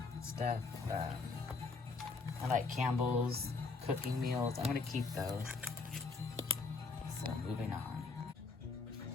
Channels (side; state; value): right; quieter; 4.2 dB